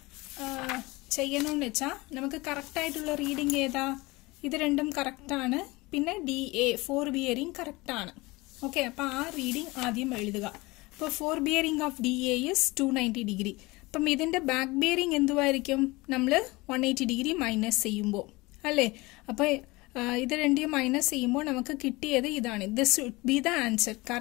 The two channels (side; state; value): right; quieter; 22.6 dB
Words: ചെയ്യണമെന്ന് വെച്ചാൽ നമുക്ക് കറക്റ്റായിട്ടുള്ള റീഡിംഗ് ഏതാ? ഇത് രണ്ടും കറക്റ്റാണ്, പിന്നെ DA ഫോർ ബിയറിംഗ് കറക്റ്റാണ്. ഓക്കെ, അപ്പോൾ ആ റീഡിംഗ് ആദ്യം എഴുതുക. അപ്പോൾ four bearing of DA is 290 degree. അപ്പം ഇതിൻ്റെ ബാക്ക് ബിയറിംഗ് എന്തുവായിരിക്കും? നമ്മൾ 180 ഡിഗ്രി മൈനസ് ചെയ്യുമ്പോൾ അല്ലേ? അപ്പോൾ ഇത് രണ്ടും മൈനസ് ചെയ്യുമ്പോൾ നമുക്ക് കിട്ടിയത് ഇതാണ്. This should be the answer.